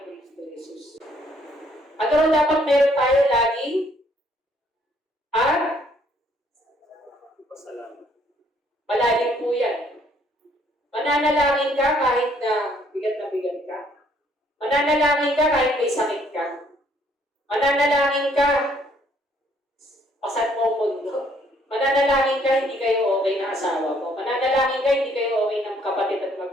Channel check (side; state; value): both; normal; correlation 0.65